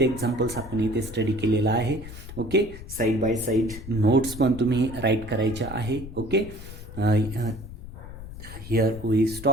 एक्झाम्पल्स आपण इथे स्टडी केलेला आहे. ओके. साईड बाय साईड नोट्स पण तुम्ही राईट करायच्या आहे. Okay. Here we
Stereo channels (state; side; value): noise; left; rumble, 12 dB below the sound